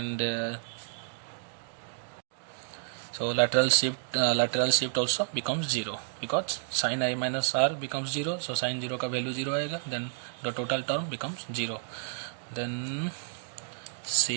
so lateral shift also becomes 0 because sin I minus r becomes 0. So sin 0 का value 0 आएगा, then the total term becomes 0. Then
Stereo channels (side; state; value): left; silent; digital silence